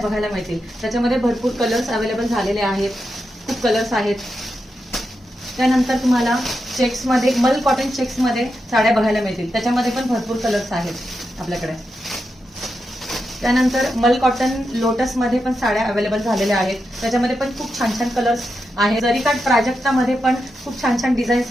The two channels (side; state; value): both; normal; correlation 0.87